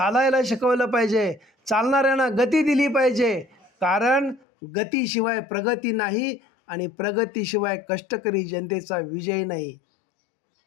शिकवलं पाहिजे, चालणाऱ्यांना गती दिली पाहिजे. कारण गतीशिवाय प्रगती नाही आणि प्रगतीशिवाय कष्टकरी जनतेचा विजय नाही.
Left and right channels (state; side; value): drops out; right; at 4.5 s